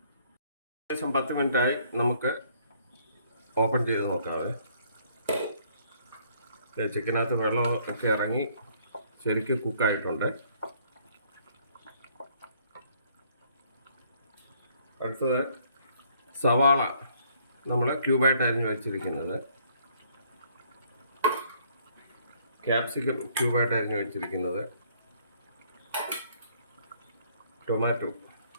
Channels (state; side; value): inverted; both; correlation -0.64